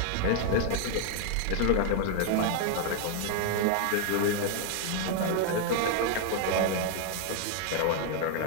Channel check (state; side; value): different; both; correlation 0.00